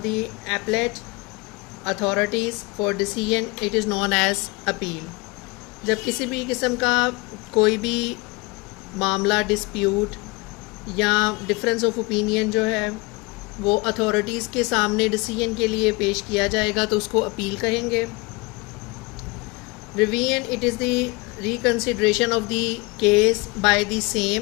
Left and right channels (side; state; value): right; quieter; 25.1 dB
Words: the appellate authorities for decision, it is known as appeal. जब किसी भी किस्म का कोई भी मामला डिस्प्यूट या डिफरेंस ऑफ ओपिनियन जो है वो अथॉरिटीज़ के सामने डिसीजन के लिए पेश किया जाएगा तो उसको अपील कहेंगे। Revision: it is the reconsideration of the case by the